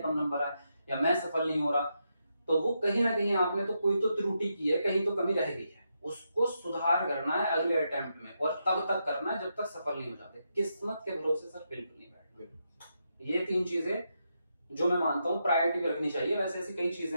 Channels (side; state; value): both; inverted; correlation -0.83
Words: नंबर आए, या मैं सफल नहीं हो रहा, तो वो कहीं ना कहीं आपने तो कोई तो त्रुटि की है, कहीं तो कमी रह गई है, उसको सुधार करना है अगले अटेम्प्ट में, और तब तक करना है जब तक सफल नहीं हो जाते। किस्मत के भरोसे सर बिल्कुल नहीं बैठना। ये 3 चीजें जो मैं मानता हूँ प्रायोरिटी में रखनी चाहिए। वैसे ऐसी कई चीजें